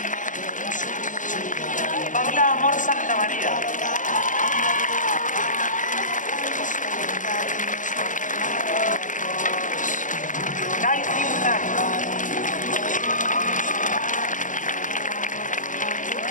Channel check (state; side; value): late; right; 0.37 ms